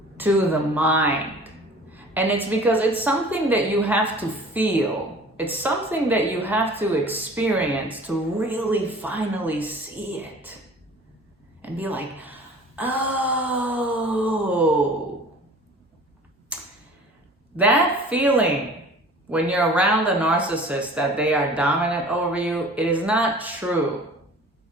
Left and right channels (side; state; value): both; normal; correlation 0.45